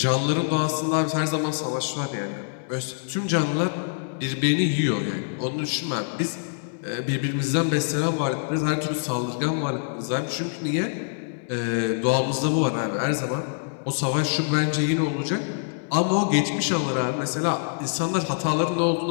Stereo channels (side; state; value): right; silent; digital silence